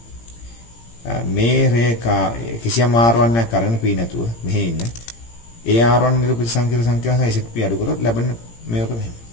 මේ රේඛා කිසියම් R1 එකක් අරගෙන P නැතුව මෙහෙ ඉන්න ඒ R1 නිරූපිත සංකීර්ණ සංඛ්‍යාව සහ ZP අඩු කරොත් ලැබෙන මේක මෙහෙම.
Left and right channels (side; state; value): right; late; 17 ms